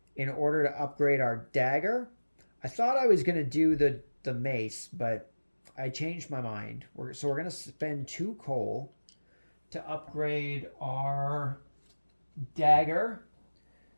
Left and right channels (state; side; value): inverted; both; correlation -1.00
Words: in order to upgrade our dagger. I thought I was going to do the mace, but I changed my mind. So we're going to spend 2 coal to upgrade our dagger,